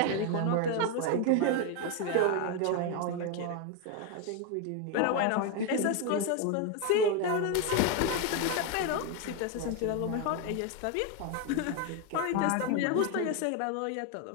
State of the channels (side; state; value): both; different; correlation 0.01